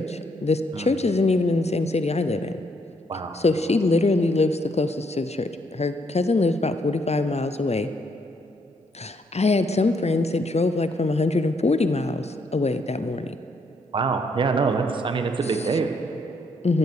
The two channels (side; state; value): both; normal; correlation 0.72